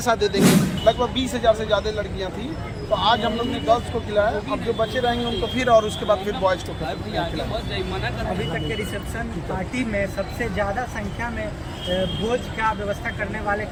दे देंगे। लगभग 20,000 से ज़्यादा लड़कियाँ थी, तो आज हम लोग ने गर्ल्स को खिलाया, अब जो बच्चे रहेंगे उनको फिर, और उसके बाद फिर बॉयज़ को खिलाया। अभी तक के रिसेप्शन पार्टी में सबसे ज़्यादा संख्या में भोज का व्यवस्था करने वाले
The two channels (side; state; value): both; identical; correlation 1.00